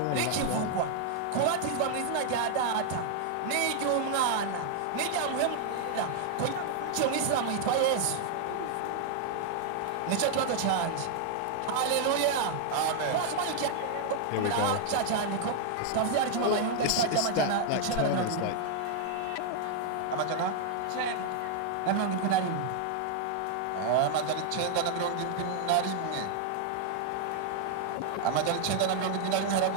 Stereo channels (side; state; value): both; different; correlation 0.00